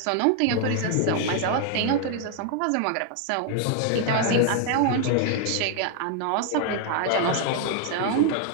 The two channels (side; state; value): both; different; correlation 0.00